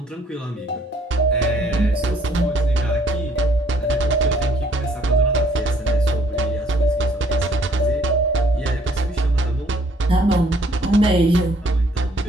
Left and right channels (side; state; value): both; normal; correlation 0.62